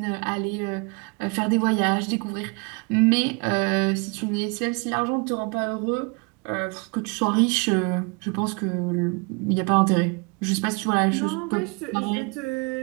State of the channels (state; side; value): quieter; left; 31.2 dB